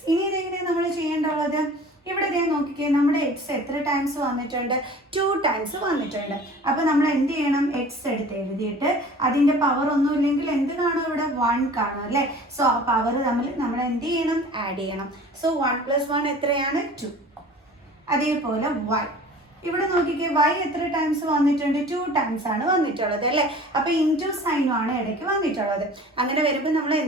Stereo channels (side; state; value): both; normal; correlation 0.44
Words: ഇനി ഇതെങ്ങനെയാണ് നമ്മൾ ചെയ്യേണ്ടത്? ഇവിടെ ഇതേ നോക്കിക്കേ, നമ്മുടെ എക്സ് എത്ര ടൈംസ് വന്നിട്ടുണ്ട്? 2 ടൈംസ് വന്നിട്ടുണ്ട്. അപ്പോൾ നമ്മൾ എന്ത് ചെയ്യണം? എക്സ് എടുത്ത് എഴുതിയിട്ട് അതിൻ്റെ പവർ ഒന്നും ഇല്ലെങ്കിൽ എന്ത് കാണും? ഇവിടെ 1 കാണും അല്ലേ? സോ ആ പവർ തമ്മിൽ നമ്മൾ എന്ത് ചെയ്യണം? ആഡ് ചെയ്യണം. സോ 1 + 1 എത്രയാണ്? 2. അതേപോലെ y, ഇവിടെ നോക്കിക്കേ, y എത്ര ടൈംസ് വന്നിട്ടുണ്ട്? 2 ടൈംസ് ആണ് വന്നിട്ടുള്ളത് അല്ലേ? അപ്പോൾ ഇൻറ്റു സൈനും ആണ് ഇടയ്ക്ക് വന്നിട്ടുള്ളത്. അങ്ങനെ വരുമ്പോൾ നമ്മൾ